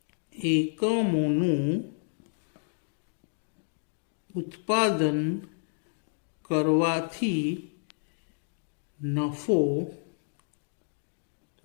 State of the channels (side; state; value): right; silent; digital silence